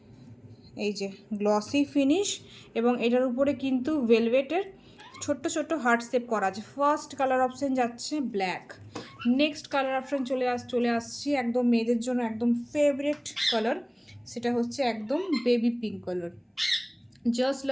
এই যে গ্লসি ফিনিশ, এবং এটার উপরে কিন্তু ভেলভেটের ছোট্ট ছোট্ট হার্ট শেপ করা আছে। ফার্স্ট কালার অপশান যাচ্ছে ব্ল্যাক। নেক্সট কালার অপশান চলে আসছি একদম মেয়েদের জন্য একদম ফেভারিট কালার, সেটা হচ্ছে একদম baby pink colour. Just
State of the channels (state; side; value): identical; both; correlation 1.00